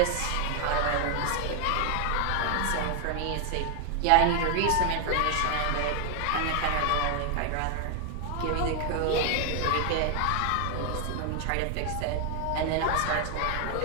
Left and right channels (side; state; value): both; different; correlation 0.00